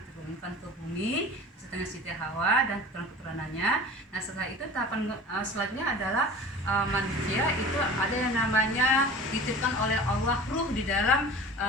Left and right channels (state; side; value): normal; both; correlation 0.39